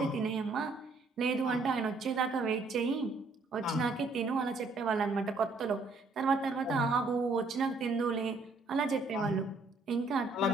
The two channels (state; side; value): quieter; left; 3.5 dB